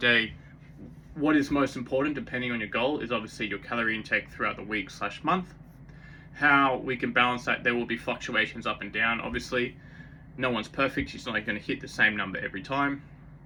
day, what is most important, depending on your goal, is obviously your calorie intake throughout the week / month. How we can balance that, there will be fluctuations up and down. Obviously, no one's perfect. It's not like going to hit the same number every time.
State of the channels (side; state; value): both; identical; correlation 1.00